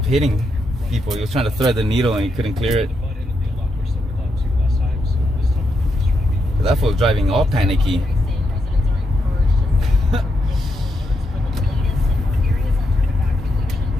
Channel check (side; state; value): both; normal; correlation 0.82